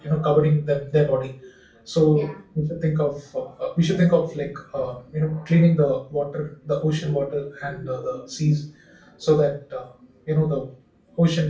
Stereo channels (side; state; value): both; identical; correlation 1.00